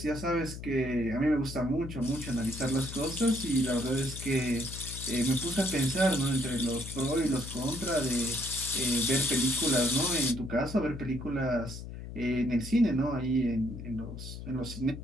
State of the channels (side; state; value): left; noise; hum, 10 dB below the sound